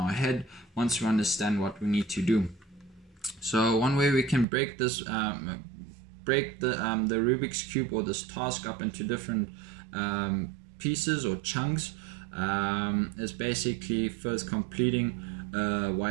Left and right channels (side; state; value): left; drops out; at 4.5 s